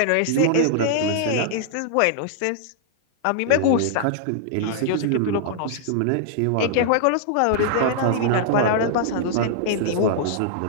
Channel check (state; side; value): different; both; correlation -0.01